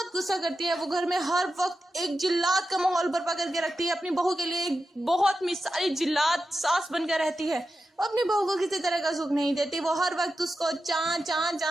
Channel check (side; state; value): both; normal; correlation 0.90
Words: गुस्सा करती है। वो घर में हर वक्त एक जिल्लात का माहौल बर्पा करके रखती है अपनी बहू के लिए, एक बहुत मिसाली जिल्लात सास बनकर रहती है। वो अपनी बहू को किसी तरह का सुख नहीं देती। वो हर वक्त उसको चां चां